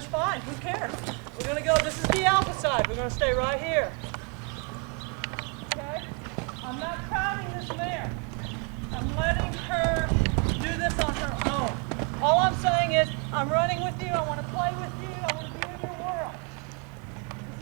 fine. Who cares? We're going to go, this is the alpha side. We're going to stay right here. Okay? I'm not crowding this mare. I'm letting her do this on her own. All I'm saying is, I'm running with you, I want to play with you, I want to be in your world.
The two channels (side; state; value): left; quieter; 34.0 dB